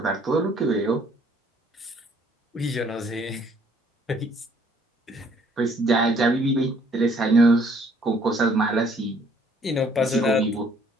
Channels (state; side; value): normal; both; correlation 0.62